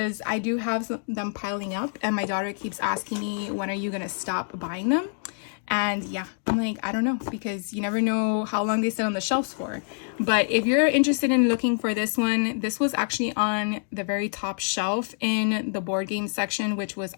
I do have them piling up and my daughter keeps asking me, when are you going to stop buying them? And yeah, I'm like, I don't know, because you never know how long they sit on the shelves for. But if you're interested in looking for this one, this was actually on the very top shelf in the board game section, which was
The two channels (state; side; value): silent; right; 59 dB below the other